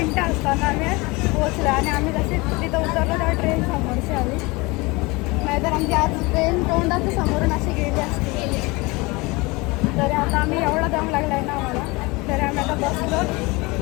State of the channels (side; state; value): right; quieter; 24.6 dB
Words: असताना आम्ही पोहोचलो आणि आम्ही जसे तिथं उतरलो तेव्हा ट्रेन समोरची आली. नाहीतर आमची आज ट्रेन तोंडाचं समोरून अशी गेली असते. तरी आता आम्ही एवढा दम लागला आहे ना आम्हाला. तरी आम्ही आता बसलो.